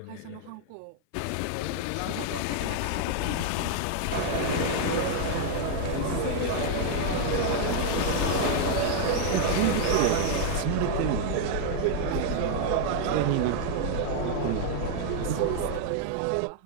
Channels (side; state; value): both; different; correlation 0.00